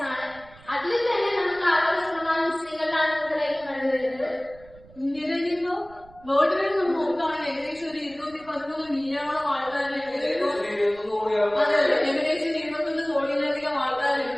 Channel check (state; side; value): noise; right; rumble, 24 dB below the sound